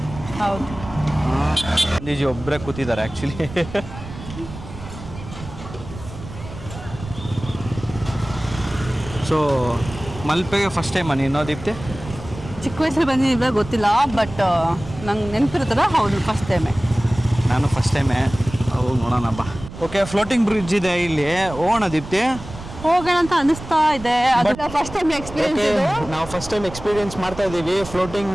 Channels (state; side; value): noise; right; rumble, 13 dB below the sound